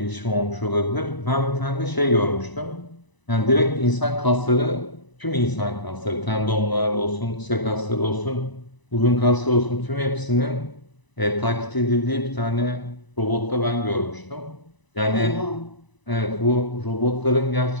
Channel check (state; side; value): late; right; 1.0 ms